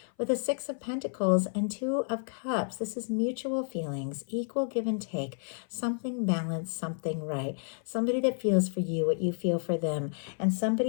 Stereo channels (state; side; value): silent; right; 56 dB below the other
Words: With the Six of Pentacles and Two of Cups, this is mutual feelings, equal give and take, something balanced, something right. Somebody that feels for you what you feel for them, and